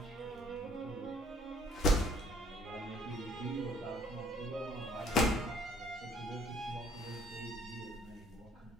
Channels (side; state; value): both; normal; correlation 0.59